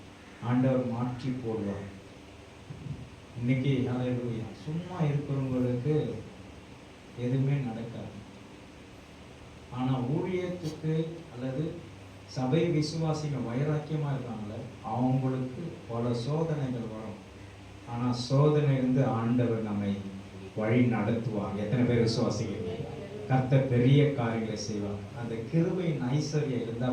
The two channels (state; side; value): identical; both; correlation 1.00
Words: ஆண்டவர் மாற்றி போடுவார். இன்னைக்கு ஹல்லேலூயா, சும்மா இருக்கிறவங்களுக்கு எதுவுமே நடக்காது. ஆனா ஊழியத்துக்கு அல்லது சபை விசுவாசிகள் வைராக்கியமா இருக்காங்களே, அவங்களுக்கு பல சோதனைகள் வரும். ஆனா சோதனை இருந்து ஆண்டவர் நம்மை வழி நடத்துவார். எத்தனை பேர் விசுவாசிக்கிறீங்க? கர்த்தர் பெரிய காரியங்களை செய்வார். அந்த கிருபையின் ஐஸ்வர்யம் இருந்தா